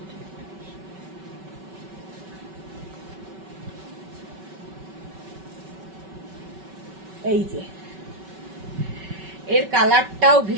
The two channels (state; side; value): late; left; 5.3 ms